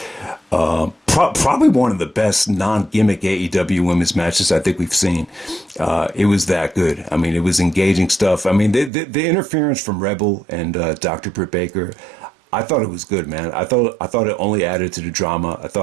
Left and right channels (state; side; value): drops out; left; at 8.9 s